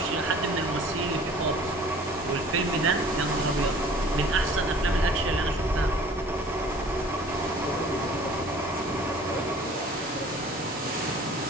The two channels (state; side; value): normal; both; correlation 0.49